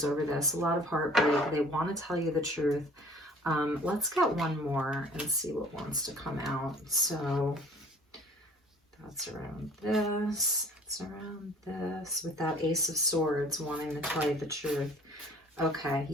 over this, a lot of heartbreak. They want to tell you the truth. Let's get one more and see what wants to come out. So that's around this, that's around this, with that Ace of Swords wanting to tell you the truth. Okay,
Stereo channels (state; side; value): normal; both; correlation 0.51